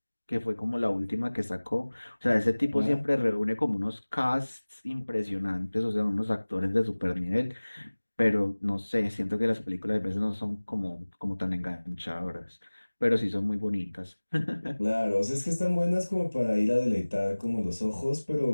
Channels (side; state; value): both; inverted; correlation -1.00